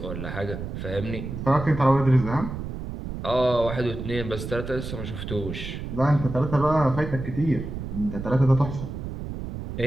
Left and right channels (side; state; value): right; noise; rumble, 7 dB below the sound